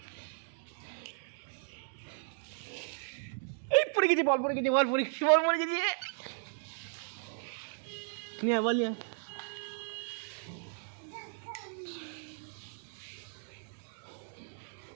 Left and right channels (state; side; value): silent; left; digital silence